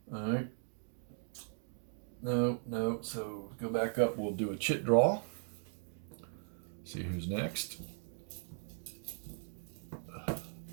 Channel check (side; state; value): left; silent; digital silence